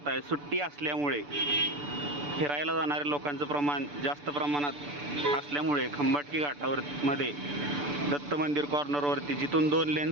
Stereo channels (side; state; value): left; late; 6.9 ms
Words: सुट्टी असल्यामुळे फिरायला जाणाऱ्या लोकांचं प्रमाण जास्त प्रमाणात असल्यामुळे खंबाटकी घाटावर मध्ये दत्त मंदिर कॉर्नरवरती जिथून 2 लेन